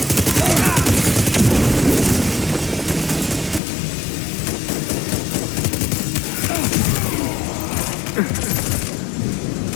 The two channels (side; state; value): right; drops out; at 3.6 s